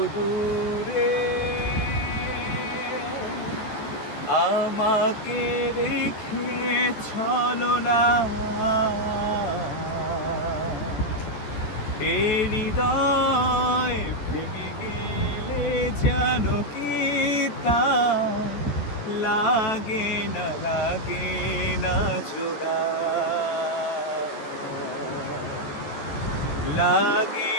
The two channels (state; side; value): late; right; 14 ms